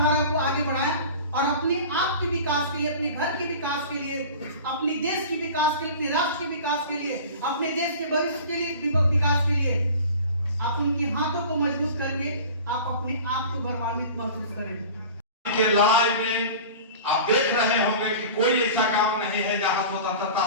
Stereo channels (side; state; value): both; inverted; correlation -0.39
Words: को आगे बढ़ाएं और अपने आप के विकास के लिए, अपने घर के विकास के लिए, अपने देश के विकास के लिए, अपने राष्ट्र के विकास के लिए, अपने देश के भविष्य के लिए, विकास के लिए आप उनकी हाथों को मजबूत करके आप अपने आप को गौरवान्वित महसूस करें। के लड़ाई में आप देख रहे होंगे कि कोई ऐसा काम नहीं है जहां